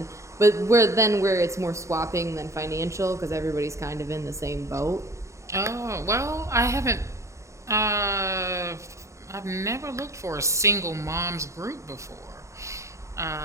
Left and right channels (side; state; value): left; late; 0.14 ms